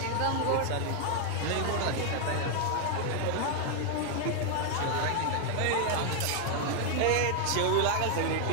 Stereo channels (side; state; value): both; different; correlation 0.00